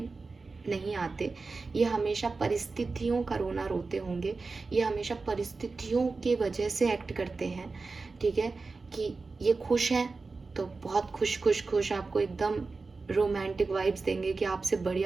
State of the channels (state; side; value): quieter; left; 4.0 dB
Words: नहीं आते, ये हमेशा परिस्थितियों का रोना रोते होंगे, ये हमेशा परिस्थितियों के वजह से एक्ट करते हैं, ठीक है। कि ये खुश हैं तो बहुत खुश आपको एकदम रोमांटिक वाइब्स देंगे कि आपसे